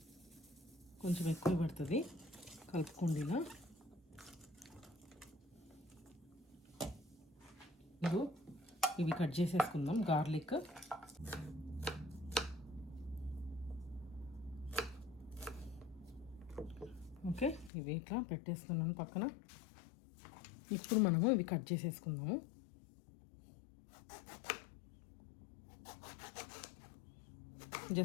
కొంచెం ఎక్కువ పడుతుంది, కలుపుకుండినా. ఇవి కట్ చేసేసుకుందాం. గార్లిక్, ఓకే, ఇవి ఇట్లా పెట్టేస్తున్నాను పక్కన. ఇప్పుడు మనము ఇవి కట్ చేసేసుకుందాము.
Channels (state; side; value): drops out; right; at 17.7 s